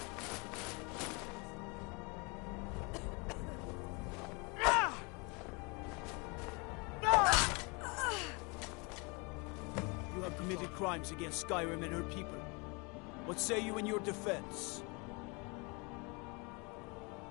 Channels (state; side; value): quieter; right; 30.0 dB